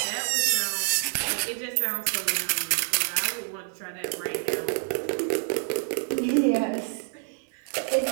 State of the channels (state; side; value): silent; left; digital silence